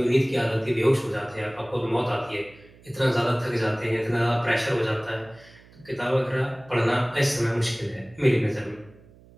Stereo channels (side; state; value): right; noise; hum, 25 dB below the sound